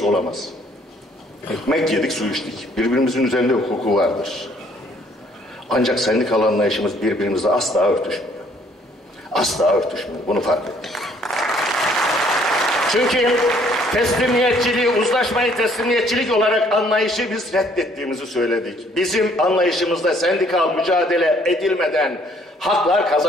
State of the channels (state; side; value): normal; both; correlation 0.62